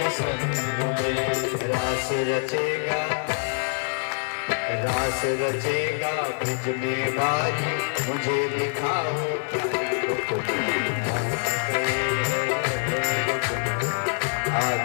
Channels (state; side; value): silent; right; 61 dB below the other